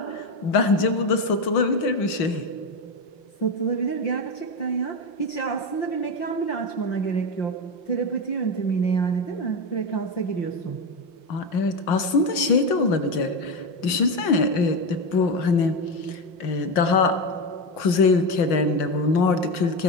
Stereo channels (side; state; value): right; late; 6.3 ms